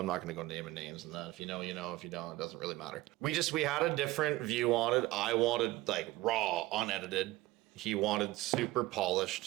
not going to go naming names and that. If you know, you know. If you don't, it doesn't really matter. We had a different view on it. I wanted like raw, unedited. He wanted super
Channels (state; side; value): quieter; left; 18.1 dB